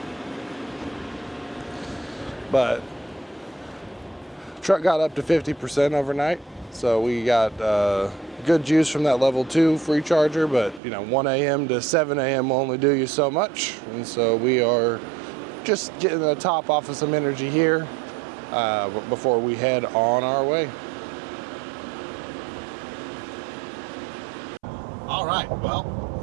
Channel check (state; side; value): drops out; left; at 10.8 s